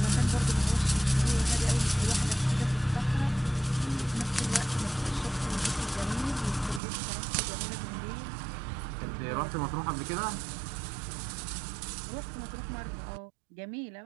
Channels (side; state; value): left; drops out; at 6.8 s